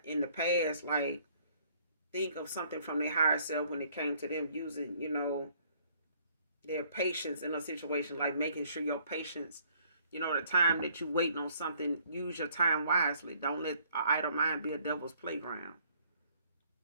in the past, like, think of something from their higher self when it came to them using, you know, their patience in a situation, like making sure your patience, you know, the time that you waiting on something, use your time wisely. Don't let an idle mind be a devil's playground.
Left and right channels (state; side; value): inverted; both; correlation -0.62